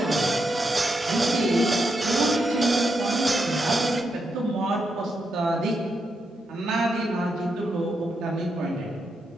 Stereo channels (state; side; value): normal; both; correlation 0.83